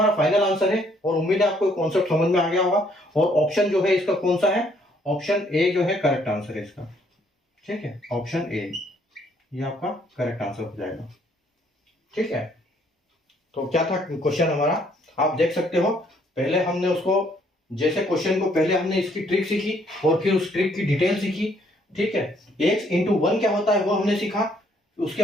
फाइनल आंसर है, और उम्मीद है आपको कॉन्सेप्ट समझ में आ गया होगा, और ऑप्शन जो है इसका कौन सा है, ऑप्शन ए जो है करेक्ट आंसर है इसका, ठीक है, ऑप्शन ए ये आपका करेक्ट आंसर हो जाएगा, ठीक है। तो क्या था क्वेश्चन हमारा, आप देख सकते हो। पहले हमने उसको, जैसे क्वेश्चन को पहले हमने इसकी ट्रिक सीखी और फिर उस ट्रिक की डिटेल सीखी, ठीक है। x इंटू 1 क्या होता है वो हमने सीखा, उसके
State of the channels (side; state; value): both; normal; correlation 0.66